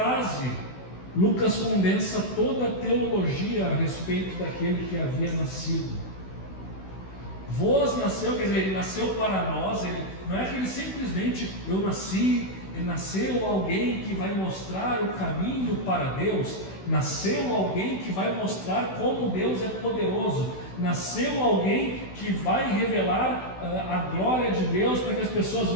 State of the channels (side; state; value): right; late; 16 ms